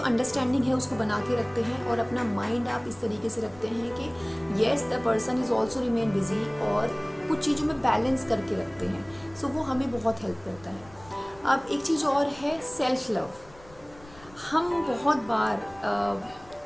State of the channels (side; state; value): left; noise; rumble, 23 dB below the sound